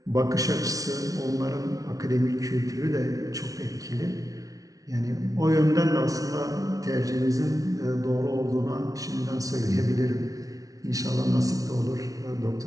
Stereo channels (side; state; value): left; late; 0.18 ms